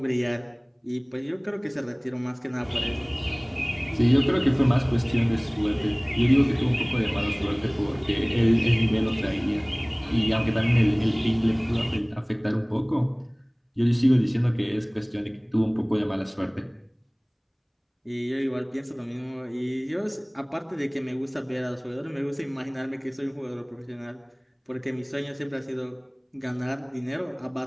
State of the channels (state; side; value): identical; both; correlation 1.00